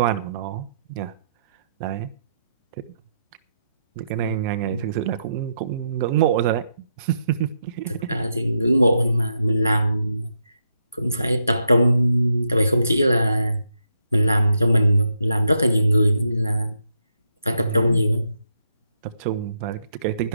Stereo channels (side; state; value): both; inverted; correlation -0.79